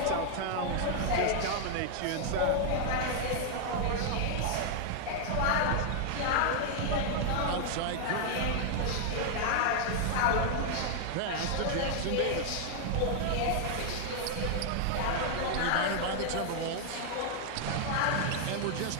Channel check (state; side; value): different; both; correlation 0.00